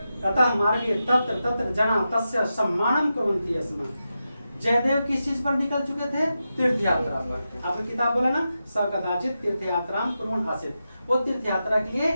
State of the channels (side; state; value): both; inverted; correlation -0.90